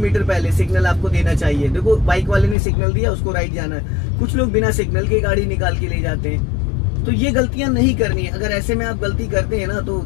पहले सिग्नल आपको देना चाहिए। देखो बाइक वाले ने सिग्नल दिया, उसको राइट जाना है। कुछ लोग बिना सिग्नल के गाड़ी निकाल के ले जाते हैं, तो ये गलतियां नहीं करनी है। अगर ऐसे में आप गलती करते हैं ना तो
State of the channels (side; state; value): right; drops out; at 2.6 s